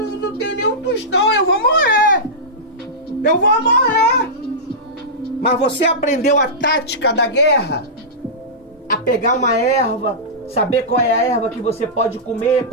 tem nenhum tostão, eu vou morrer. Eu vou morrer. Mas você aprendeu a tática da guerra? A pegar uma erva, saber qual é a erva que você pode comer,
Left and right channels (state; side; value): normal; both; correlation -0.15